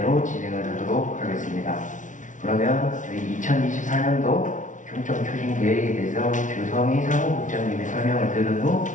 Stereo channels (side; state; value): right; late; 0.37 ms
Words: 진행을 하도록 하겠습니다. 그러면 저희 2024년도 중점 추진 계획에 대해서 주성희 사무국장님의 설명을 들은 후